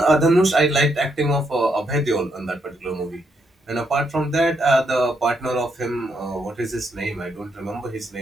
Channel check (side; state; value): both; normal; correlation 0.77